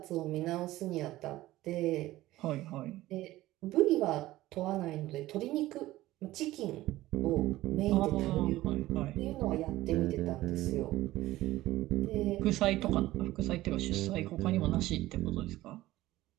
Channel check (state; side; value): quieter; left; 16.5 dB